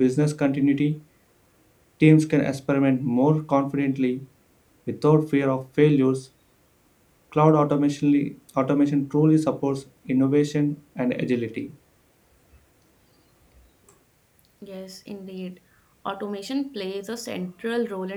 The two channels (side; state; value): both; identical; correlation 1.00